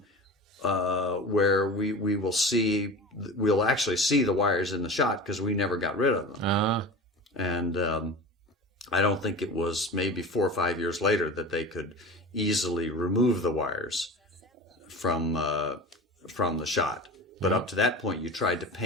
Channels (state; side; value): normal; both; correlation 0.32